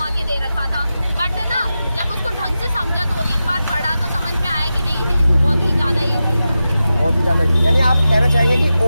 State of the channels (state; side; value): inverted; both; correlation -0.92